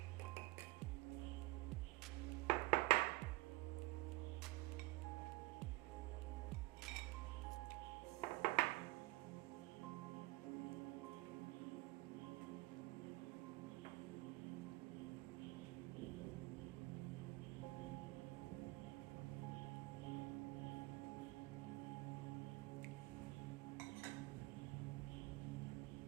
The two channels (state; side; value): quieter; left; 20.8 dB